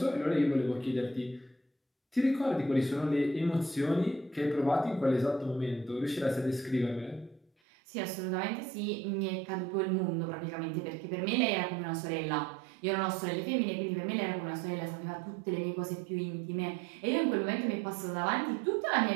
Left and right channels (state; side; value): drops out; left; at 7.5 s